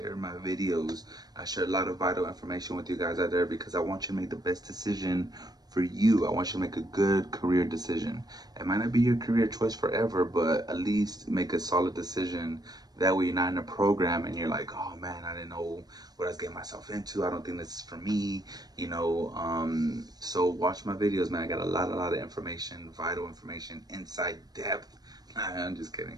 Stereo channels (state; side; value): late; left; 0.19 ms